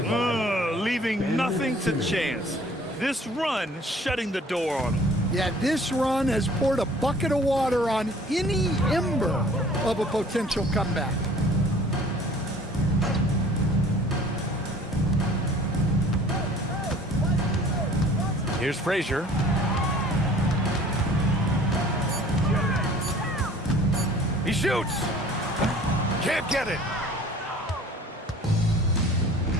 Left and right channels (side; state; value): both; normal; correlation 0.51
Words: Leaving nothing to chance. This run shutting the door on him. Yeah, this run has poured a bucket of water on any ember of a potential comeback. Here's Frazier. He shoots. Can't get it.